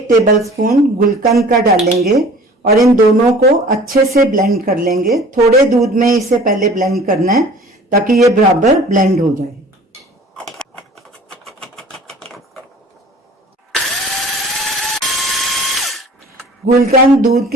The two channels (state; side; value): normal; both; correlation 0.46